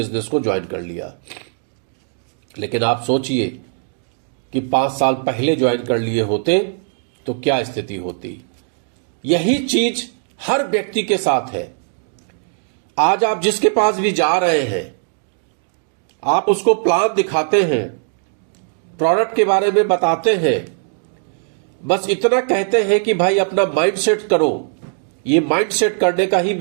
को ज्वाइन कर लिया। लेकिन आप सोचिए कि 5 साल पहले ज्वाइन कर लिए होते तो क्या स्थिति होती। यही चीज हर व्यक्ति के साथ है। आज आप जिसके पास भी जा रहे हैं, आप उसको प्लान दिखाते हैं, प्रोडक्ट के बारे में बताते हैं, बस इतना कहते हैं कि भाई अपना माइंड सेट करो, ये माइंड सेट करने का ही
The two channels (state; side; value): silent; left; digital silence